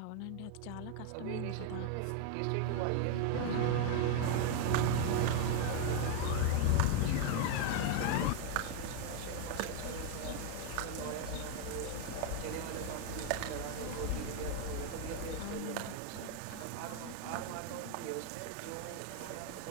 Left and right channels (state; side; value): different; both; correlation 0.00